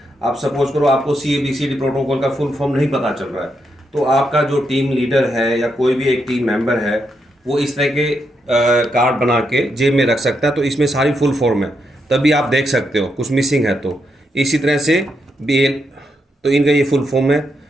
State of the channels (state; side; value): normal; both; correlation 0.81